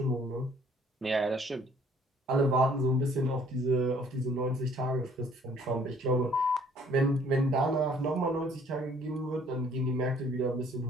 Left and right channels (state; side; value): normal; both; correlation 0.59